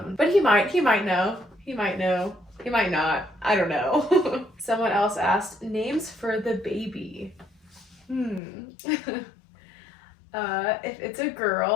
But he might know. He might know. He might not. I don't know. Someone else asked names for the baby. If it's a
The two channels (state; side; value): drops out; right; at 8.4 s